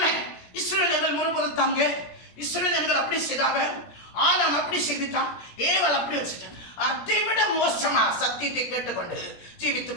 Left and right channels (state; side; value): late; right; 17 ms